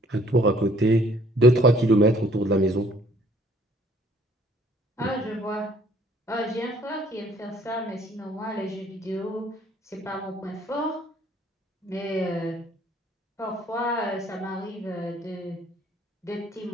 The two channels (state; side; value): normal; both; correlation 0.60